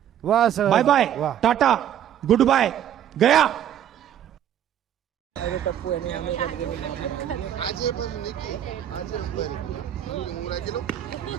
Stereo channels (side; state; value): left; quieter; 10.4 dB